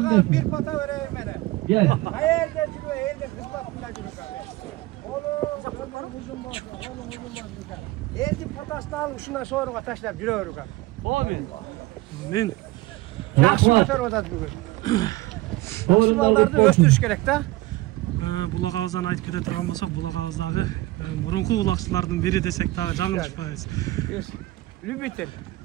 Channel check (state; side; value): quieter; left; 18.7 dB